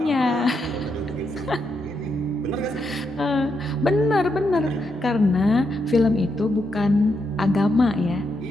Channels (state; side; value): normal; both; correlation 0.81